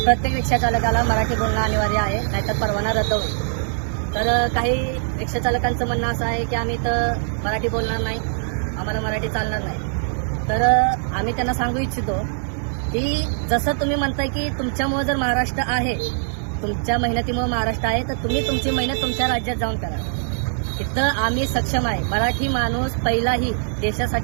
प्रत्येक रिक्षा चालकाला मराठी बोलणं अनिवार्य आहे, नाहीतर परवाना रद्द होईल। तर काही रिक्षा चालकांचं म्हणणं असं आहे की आम्ही इथं मराठी बोलणार नाही, आम्हाला मराठी चालणार नाही। तर आम्ही त्यांना सांगू इच्छितो की जसं तुम्ही म्हणताय की तुमच्यामुळे जर महाराष्ट्र आहे, तुमच्या मेहनतीमुळे महाराष्ट्र आहे, तर तुम्ही तुमची मेहनत तुमच्या राज्यात जाऊन करा। इथं आम्ही सक्षम आहे। मराठी माणूस पहिलाही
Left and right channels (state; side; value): silent; left; digital silence